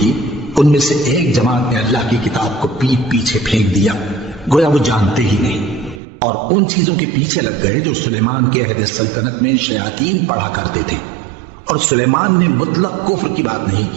ان میں سے ایک جماعت نے اللہ کی کتاب کو پیٹ پیچھے پھینک دیا، گویا وہ جانتے ہی نہیں، اور ان چیزوں کے پیچھے لگ گئے جو سلیمان کے عہد سلطنت میں شیاطین پڑھا کرتے تھے۔ اور سلیمان نے مطلق کفر کی بات نہیں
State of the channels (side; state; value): left; drops out; at 6.0 s